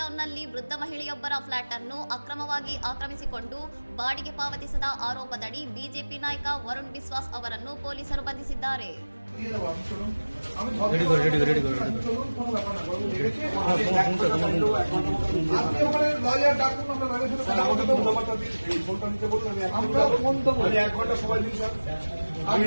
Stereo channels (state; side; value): inverted; both; correlation -1.00